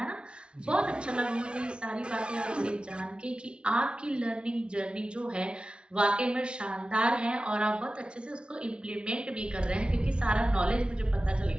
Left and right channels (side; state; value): left; late; 0.057 ms